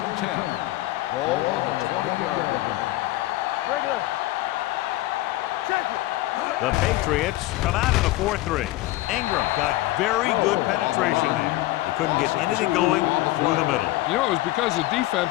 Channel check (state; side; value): quieter; right; 17.3 dB